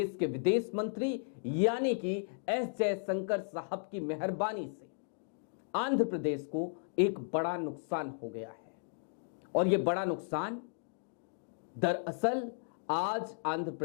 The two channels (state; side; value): silent; right; digital silence